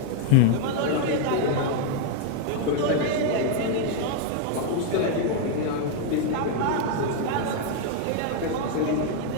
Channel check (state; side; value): different; both; correlation 0.00